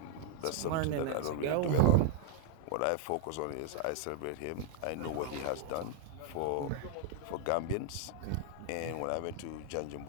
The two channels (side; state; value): both; different; correlation 0.00